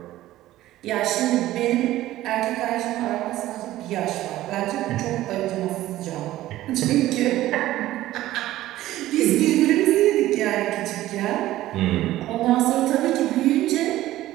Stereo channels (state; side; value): quieter; left; 15.1 dB